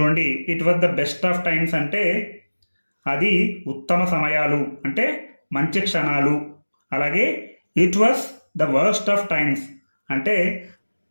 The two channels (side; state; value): both; inverted; correlation -1.00